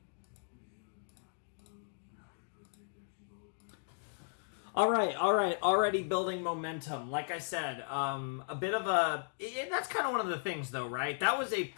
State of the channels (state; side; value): silent; right; digital silence